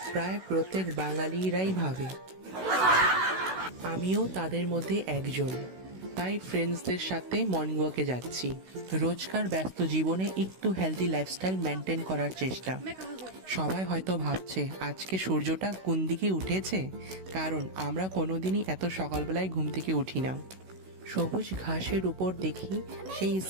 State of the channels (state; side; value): late; left; 16 ms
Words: প্রায় প্রত্যেক বাঙালিরাই ভাবে, আমিও তাদের মধ্যে একজন। তাই ফ্রেন্ডসদের সাথে মর্নিং ওয়াকে যাচ্ছি। রোজকার ব্যস্ত জীবনে একটু হেলদি লাইফস্টাইল মেনটেন করার চেষ্টা। সবাই হয়তো ভাবছে আজকে সূর্যটা কোন দিকে উঠেছে, কারণ আমরা কোনোদিনই এত সকালবেলায় ঘুম থেকে উঠি না। সবুজ ঘাসের উপর দেখি সেই